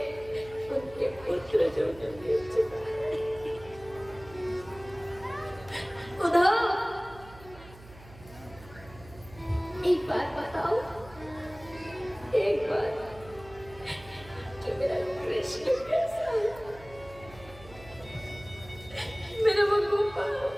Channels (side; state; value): right; noise; hum, 20 dB below the sound